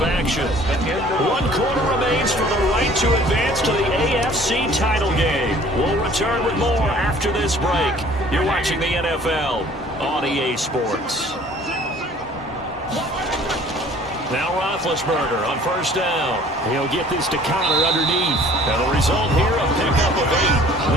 action. 1 quarter remains for the right to advance to the AFC title game. We'll return with more after this break. You're watching the NFL on EA Sports. Now Roethlisberger on 1st down. He'll get this to Connor underneath. And the result here, a pickup of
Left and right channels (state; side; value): normal; both; correlation 0.52